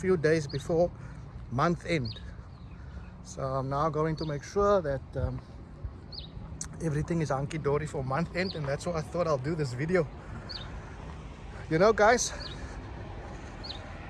days before month end. So I'm now going to make sure that everything is hunky-dory for month end, and that's why I thought I'll do this video. You know guys,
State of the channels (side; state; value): both; identical; correlation 1.00